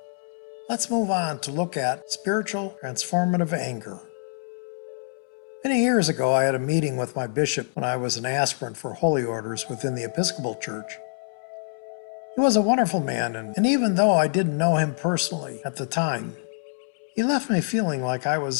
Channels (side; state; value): right; silent; 61 dB below the other